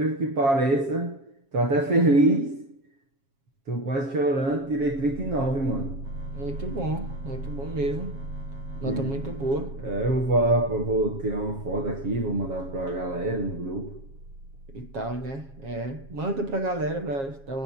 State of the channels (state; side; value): late; left; 7.3 ms